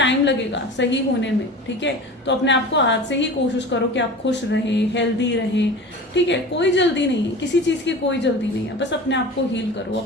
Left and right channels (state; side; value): normal; both; correlation 0.35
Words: लगेगा सही होने में, ठीक है। तो अपने आप को आज से ही कोशिश करो कि आप खुश रहें, हेल्दी रहें, ठीक है। कोई जल्दी नहीं है, किसी चीज़ की कोई जल्दी नहीं है, बस अपने आप को हील करो,